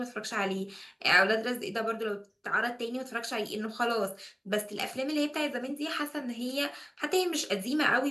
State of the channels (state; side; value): identical; both; correlation 1.00